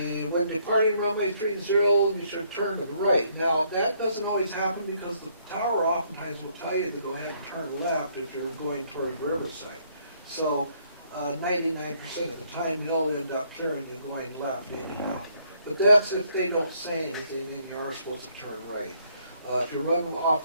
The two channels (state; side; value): inverted; both; correlation -0.67